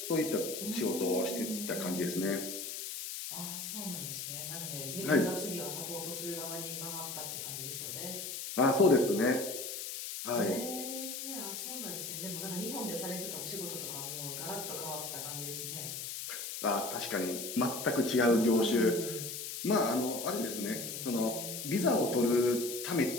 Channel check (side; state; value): left; noise; hiss, 6 dB below the sound